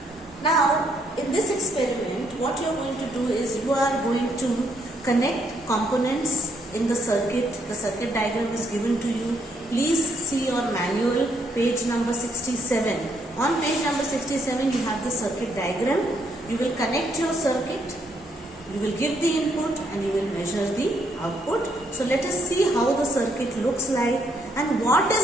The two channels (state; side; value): normal; both; correlation 0.73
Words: Now, in this experiment, what you are going to do is you are going to connect components in the circuit. The circuit diagram is given to you. Please see your manual, page number 67. On page number 67, you have the circuit diagram. You will connect your circuit, you will give the input, and you will measure the output. So let us see how the circuit looks like and what